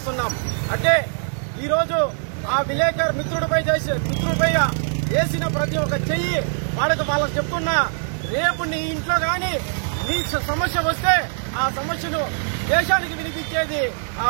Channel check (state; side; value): silent; left; 64 dB below the other